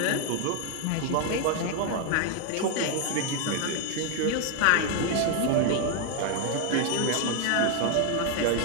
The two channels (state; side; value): different; both; correlation 0.01